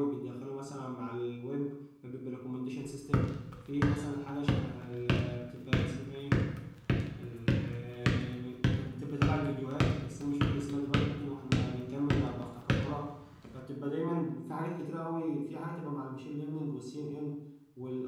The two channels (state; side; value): identical; both; correlation 1.00